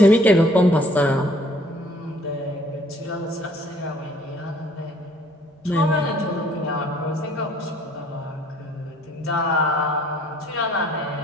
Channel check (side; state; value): both; normal; correlation 0.59